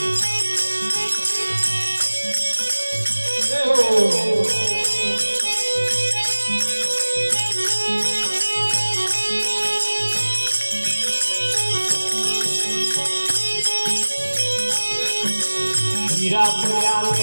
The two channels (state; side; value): inverted; both; correlation -1.00